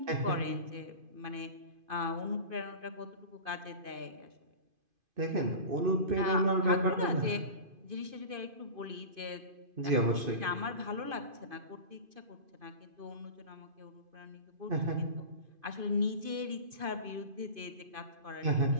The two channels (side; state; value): left; late; 2.5 ms